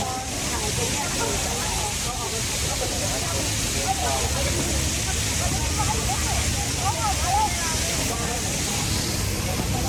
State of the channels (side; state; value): both; identical; correlation 1.00